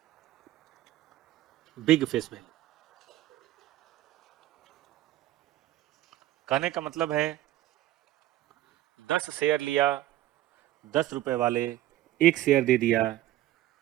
big face value. कहने का मतलब है 10 शेयर लिया 10 रुपए वाले, एक शेयर दे दिया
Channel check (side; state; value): left; quieter; 14.7 dB